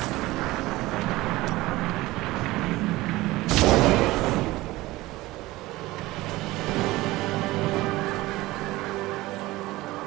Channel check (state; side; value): quieter; left; 18.9 dB